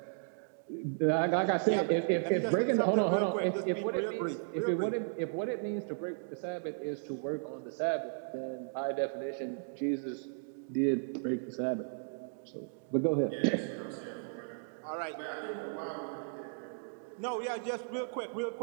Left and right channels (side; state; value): left; silent; digital silence